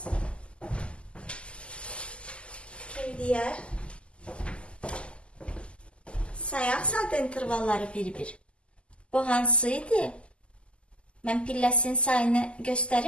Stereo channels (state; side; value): late; right; 0.053 ms